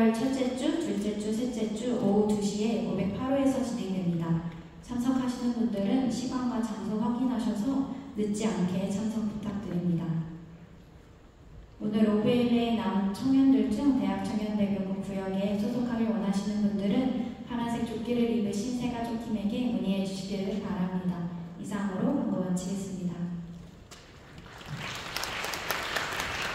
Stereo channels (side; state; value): both; identical; correlation 1.00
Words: 첫째 주, 둘째 주, 셋째 주 오후 2시에 508호에서 진행됩니다. 참석하시는 분들은 시간과 장소 확인하셔서 늦지 않게 참석 부탁드립니다. 오늘 오브에이에 남은 청년들 중 대학청년대교구 구역에 소속하길 원하시는 분들은 파란색 조끼를 입으신 새가족팀에게 문의해 주시기를 바랍니다. 이상으로 광고 마치겠습니다.